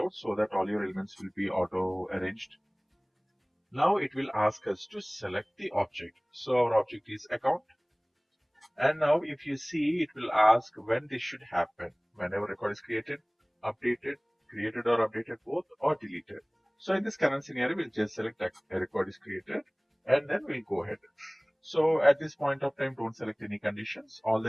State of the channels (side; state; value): both; identical; correlation 1.00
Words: so that all your elements will be auto arranged. Now it will ask us to select the object. So our object is account. And now if you see, it will ask when this should happen. Whenever record is created, updated, created or updated both, or deleted. So in this current scenario, we'll just select a record is created and then we'll go ahead. So at this point of time, don't select any conditions. All